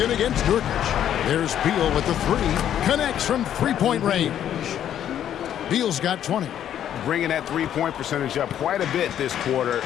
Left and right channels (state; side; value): quieter; right; 10.4 dB